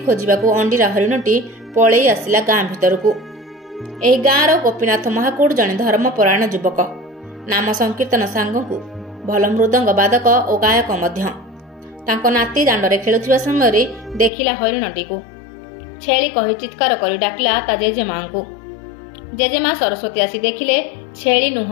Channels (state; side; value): drops out; right; at 14.3 s